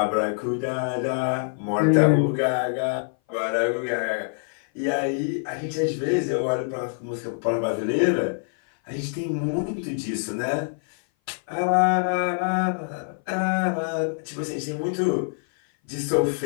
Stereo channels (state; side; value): silent; right; 58 dB below the other